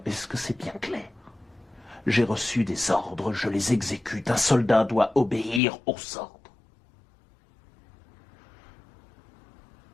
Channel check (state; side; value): drops out; right; at 5.6 s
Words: Est-ce que c'est bien clair? J'ai reçu des ordres, je les exécute. Un soldat doit obéir aux ordres.